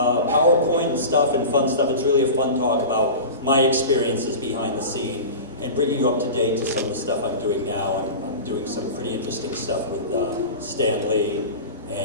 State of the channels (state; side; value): inverted; both; correlation -0.31